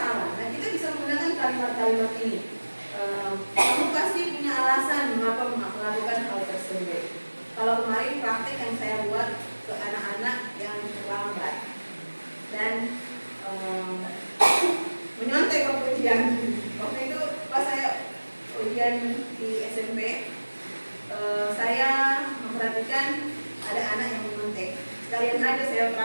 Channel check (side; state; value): both; inverted; correlation -1.00